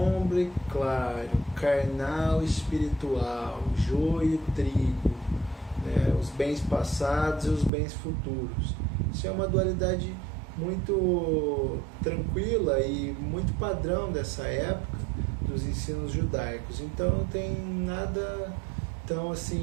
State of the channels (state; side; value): drops out; left; at 7.7 s